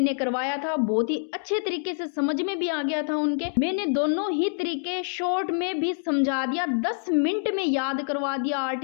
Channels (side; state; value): right; silent; 61 dB below the other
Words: करवाया था, बहुत ही अच्छे तरीके से समझ में भी आ गया था उनके। मैंने दोनों ही तरीके शॉर्ट में भी समझा दिया, 10 मिनट में याद करवा दिया,